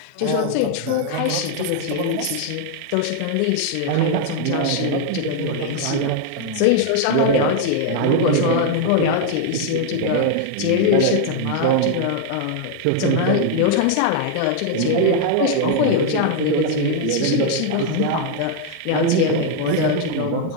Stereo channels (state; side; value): different; both; correlation 0.00